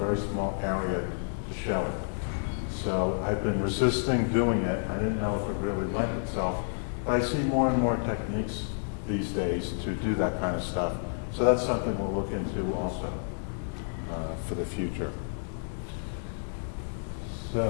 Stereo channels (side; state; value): right; silent; 56 dB below the other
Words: small area to show it. So I've been resisting doing it. I didn't know if it really lent itself, but I see more and more techniques these days to do that kind of stuff. So that's something we'll look into also for the future.